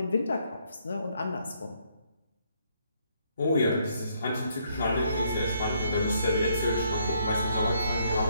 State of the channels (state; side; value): inverted; both; correlation -0.71